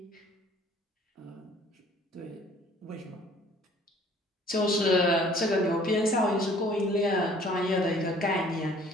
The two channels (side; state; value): both; normal; correlation 0.54